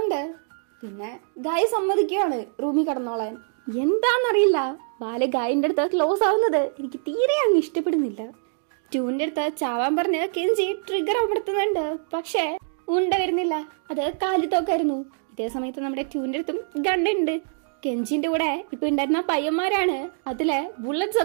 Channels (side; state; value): left; silent; digital silence